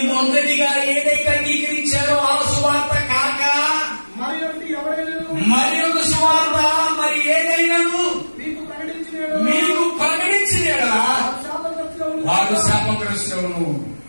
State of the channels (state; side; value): inverted; both; correlation -1.00